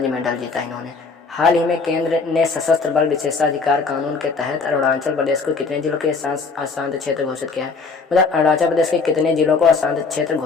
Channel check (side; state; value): right; quieter; 4.5 dB